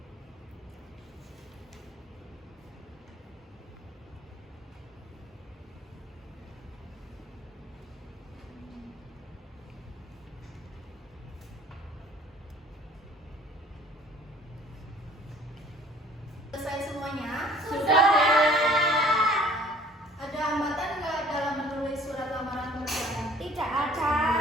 Selesai semuanya? Sudah. Ada hambatan nggak dalam menulis surat lamaran pekerjaan? Tidak ada.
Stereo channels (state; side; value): normal; both; correlation 0.53